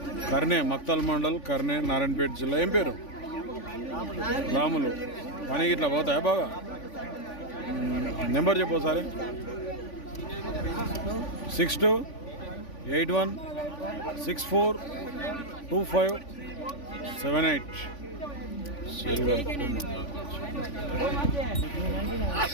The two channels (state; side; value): late; right; 3.5 ms